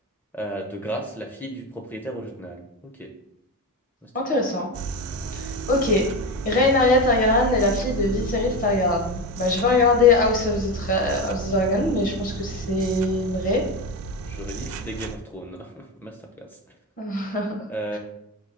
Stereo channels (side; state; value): both; normal; correlation 0.19